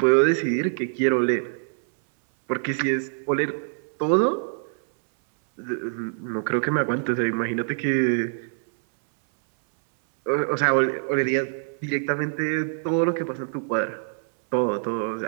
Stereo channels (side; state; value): left; silent; 61 dB below the other